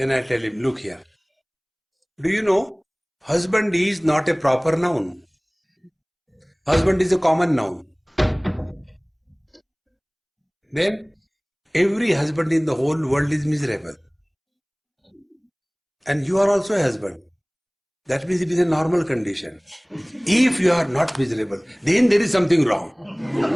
I tell him, look here. Do you know, husband is not a proper noun. Husband is a common noun. Then every husband in the whole world is miserable. And you are also a husband. That means it is a normal condition. If you are not miserable, then there is something wrong.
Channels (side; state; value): both; identical; correlation 1.00